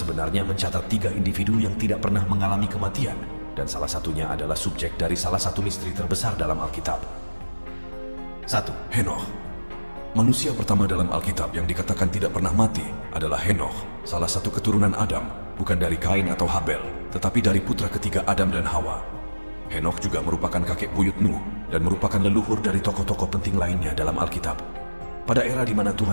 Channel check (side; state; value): both; inverted; correlation -1.00